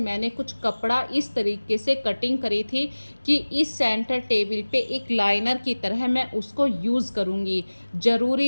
कुछ कपड़ा इस तरीके से कटिंग करी थी कि इस सेंटर टेबल पे एक लाइनर की तरह मैं उसको यूज़ करूँगी।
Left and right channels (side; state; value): both; inverted; correlation -1.00